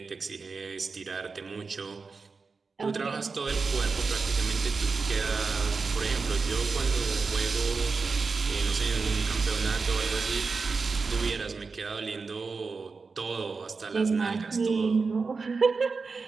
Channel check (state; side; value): quieter; left; 4.5 dB